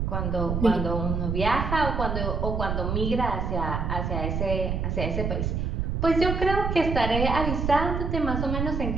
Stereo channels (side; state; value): right; noise; rumble, 1 dB below the sound